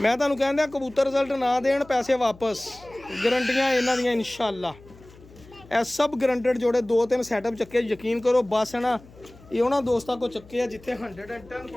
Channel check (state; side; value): noise; left; hum, 23 dB below the sound